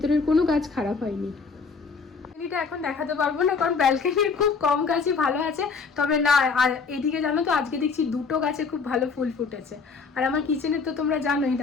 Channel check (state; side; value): quieter; right; 5.0 dB